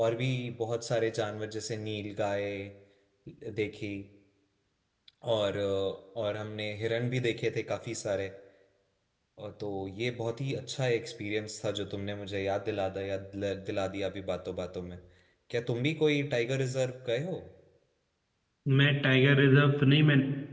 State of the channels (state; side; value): identical; both; correlation 1.00